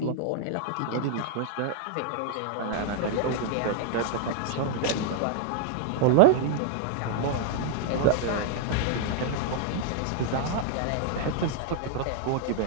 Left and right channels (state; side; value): different; both; correlation -0.01